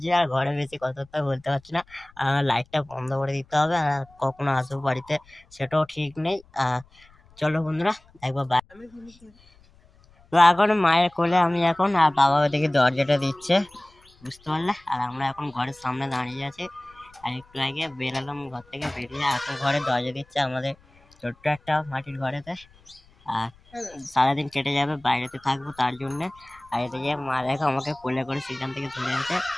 আর ঘরে বেশি কথাবার্তা বলতে পারছি না, লাইটটা বন্ধ করে দিতে হবে, আর কখনো আসবো বাড়িতে সেটাও ঠিক নেই। চলো বন্ধুরা, একবার তো এখন মায়ের কোলে আমি এখন, আর বাবা ওদিকে দরজাটা দিচ্ছে, বুঝতে পারলে। আর আমরা এখন ঘরের সামনে দাঁড়িয়ে আছি, আর একটু আগে বেরোলাম ঘর থেকে, বেরিয়ে এখন ঘরে দরজা দিচ্ছে আমাদের ছোট্ট একটা মাটির ঘরেতে। আর সারাদিন কেটে যাবে, বাইরেতে থাকবো তার জন্যে। আর এদিকে মা দেখো আমাকে কোলে করে সেখান থেকে ধরে আছে।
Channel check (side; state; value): left; noise; rumble, 28 dB below the sound